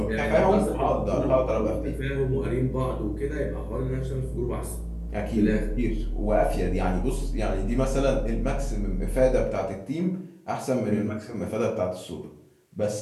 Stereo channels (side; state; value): both; identical; correlation 1.00